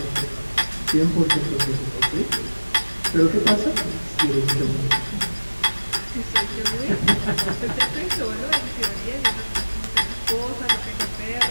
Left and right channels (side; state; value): both; inverted; correlation -1.00